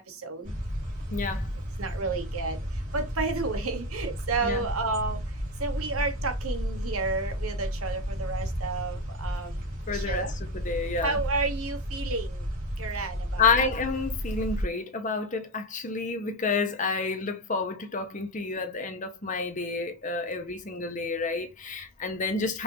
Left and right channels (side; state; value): both; normal; correlation 0.16